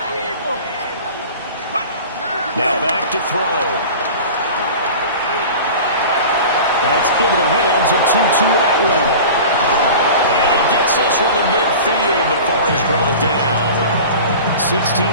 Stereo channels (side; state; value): both; inverted; correlation -0.37